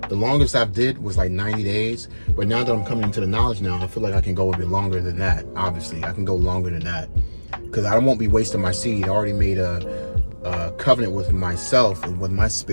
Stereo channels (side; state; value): both; inverted; correlation -1.00